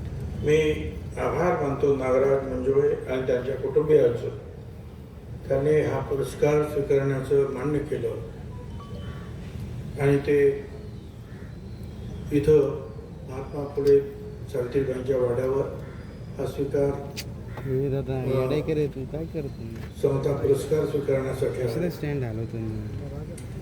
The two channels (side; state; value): both; identical; correlation 1.00